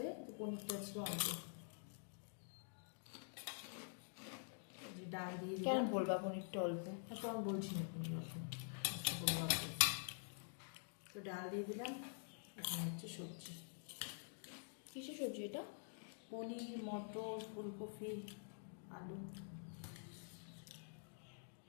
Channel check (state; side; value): silent; right; digital silence